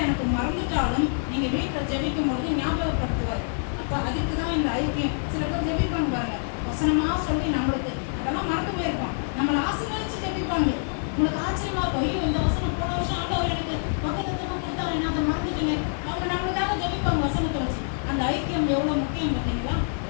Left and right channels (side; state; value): right; silent; digital silence